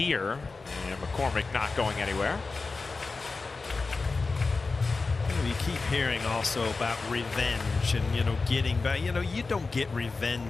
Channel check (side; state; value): right; quieter; 4.0 dB